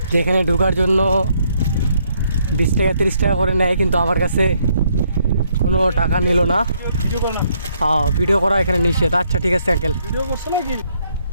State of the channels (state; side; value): inverted; both; correlation -0.71